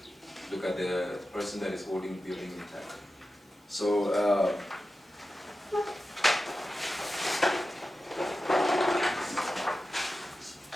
look at the person that is holding the building intact. So,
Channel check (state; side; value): normal; both; correlation 0.93